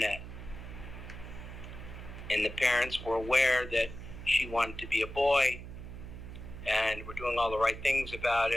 And the parents were aware that she wanted to be a boy and were doing all the right things about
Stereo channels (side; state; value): right; noise; hum, 11 dB below the sound